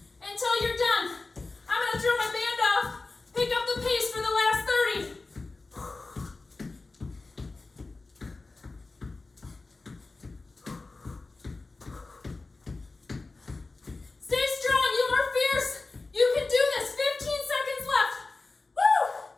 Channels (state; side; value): quieter; right; 3.6 dB